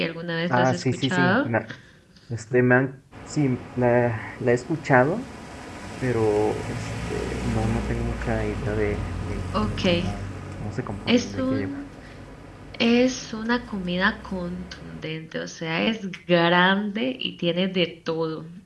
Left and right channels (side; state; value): both; identical; correlation 1.00